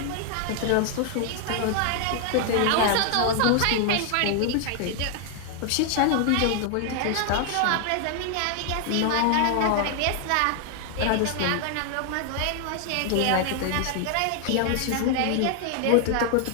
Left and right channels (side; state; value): both; different; correlation 0.00